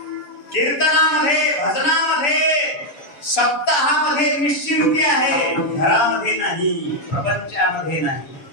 कीर्तनामध्ये, भजनामध्ये, सप्ताहामध्ये निश्चिंती आहे, घरामध्ये नाही, प्रपंचामध्ये नाही.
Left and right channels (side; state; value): right; late; 7.0 ms